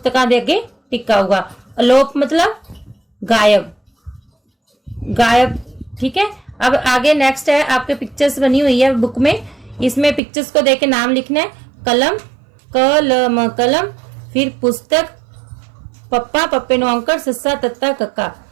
दे अगे टिक आऊगा। अलोप मतलब गायब, गायब। ठीक है, अब आगे नेक्स्ट है, आपके पिक्चर्स बनी हुई है बुक में, इसमें पिक्चर्स को देख के नाम लिखना है। कलम, कलम, कलम। फिर पुस्तक, पप्पा, पप्पे नो अंकर, सस्सा, तत्ता, कक्का।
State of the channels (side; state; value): left; drops out; at 10.2 s